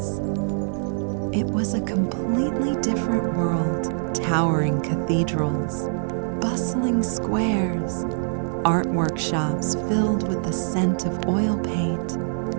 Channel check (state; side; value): silent; left; digital silence